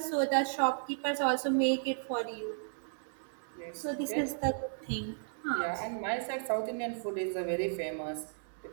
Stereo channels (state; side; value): silent; left; digital silence